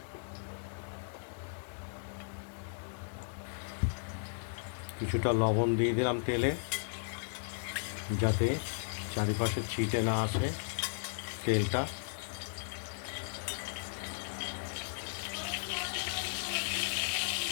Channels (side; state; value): right; silent; digital silence